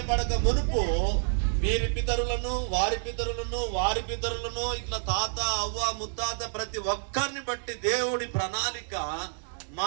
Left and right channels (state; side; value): silent; left; digital silence